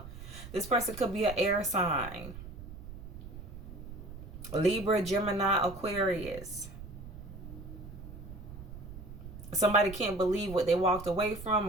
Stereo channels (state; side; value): noise; right; rumble, 12 dB below the sound